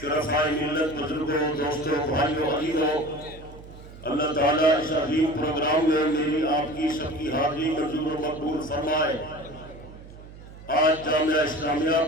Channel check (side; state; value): right; noise; hum, 17 dB below the sound